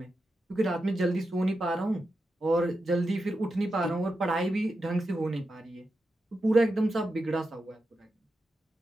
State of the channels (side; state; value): both; normal; correlation 0.89